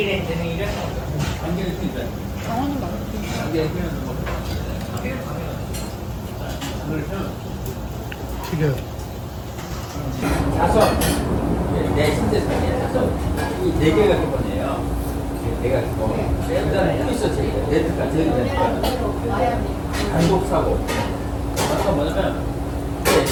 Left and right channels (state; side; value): identical; both; correlation 1.00